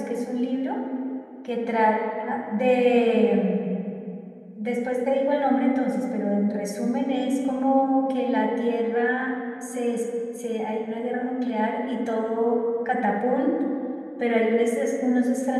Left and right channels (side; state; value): both; identical; correlation 1.00